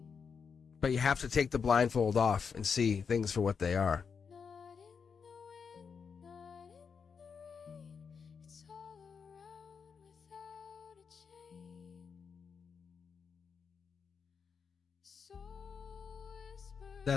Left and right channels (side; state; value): right; quieter; 6.1 dB